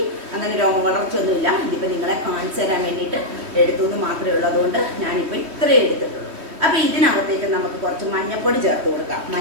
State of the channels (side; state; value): left; late; 3.2 ms